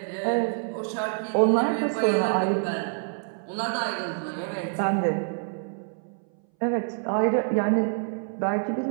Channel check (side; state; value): left; silent; 60 dB below the other